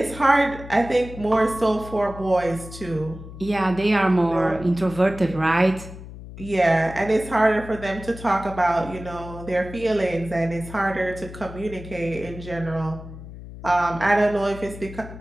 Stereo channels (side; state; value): left; noise; hum, 14 dB below the sound